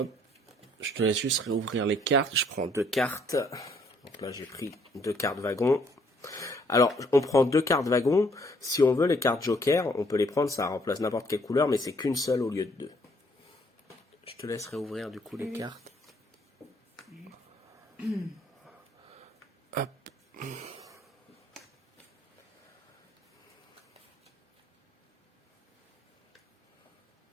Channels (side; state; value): both; normal; correlation 0.65